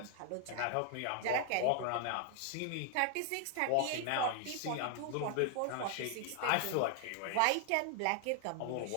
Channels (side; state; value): both; different; correlation 0.00